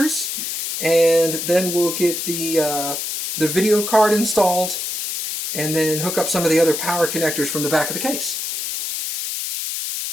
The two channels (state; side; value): noise; left; hiss, 4 dB below the sound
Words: and then we'll get the video card installed, and then hook up some of the other power connectors from the back of the case.